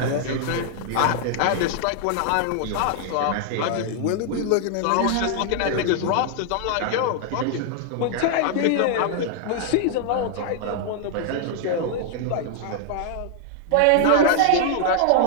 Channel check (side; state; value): both; different; correlation 0.00